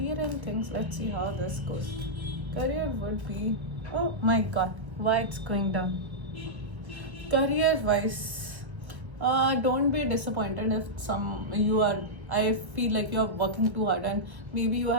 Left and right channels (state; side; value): late; left; 1.2 ms